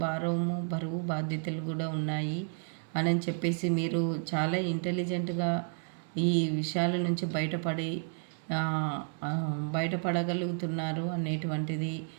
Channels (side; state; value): left; silent; 57 dB below the other